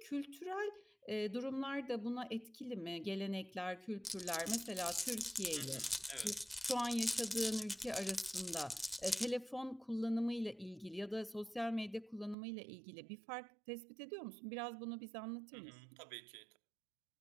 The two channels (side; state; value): left; drops out; at 12.4 s